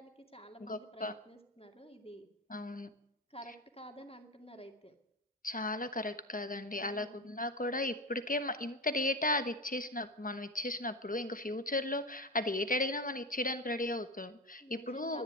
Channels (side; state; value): both; normal; correlation 0.22